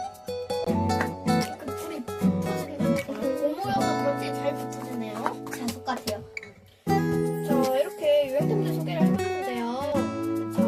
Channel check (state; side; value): identical; both; correlation 1.00